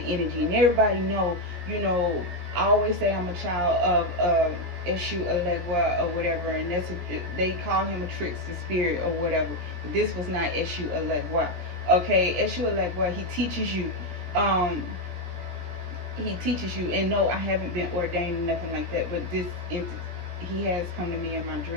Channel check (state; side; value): late; left; 17 ms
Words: energy, and everybody know, you know, I always say I'm a child of Eshu Elegua or whatever, and they call him a trickster spirit or whatever. But this was not Eshu Elegua. Okay, Eshu Elegua, he teaches you, and no, I haven't been ordained or nothing like that, but this he has come to me in my